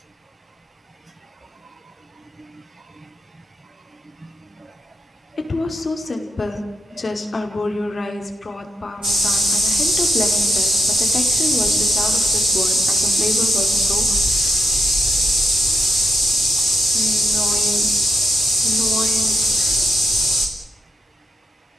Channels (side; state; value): both; normal; correlation 0.81